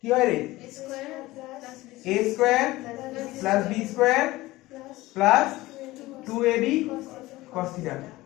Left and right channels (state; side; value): quieter; right; 18.7 dB